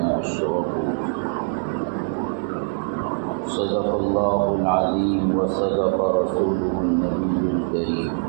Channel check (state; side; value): silent; left; 64 dB below the other